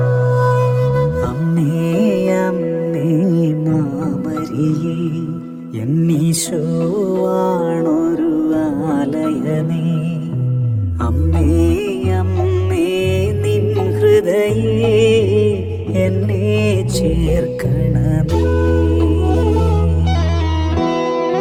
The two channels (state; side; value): identical; both; correlation 1.00